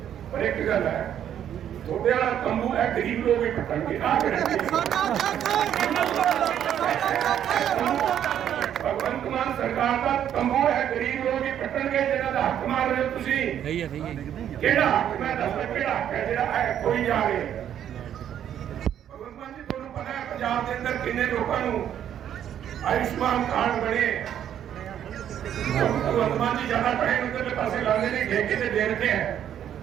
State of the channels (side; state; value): left; quieter; 10.0 dB